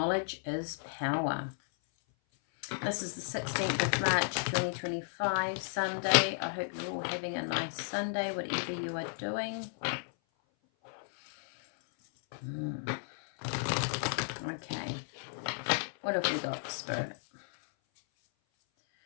is power. This is the 16th of March 2025, Sunday. I hope you're all having a nice Sunday, whatever you are doing. Okay. What have we got, Spirit?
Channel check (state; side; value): silent; right; 55 dB below the other